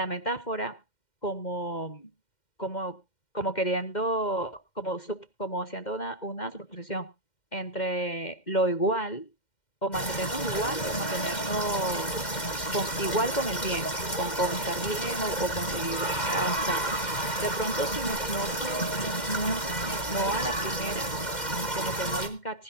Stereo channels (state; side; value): late; right; 2.1 ms